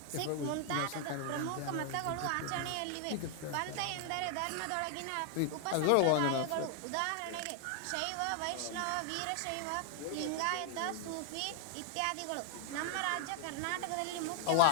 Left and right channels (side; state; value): both; different; correlation 0.00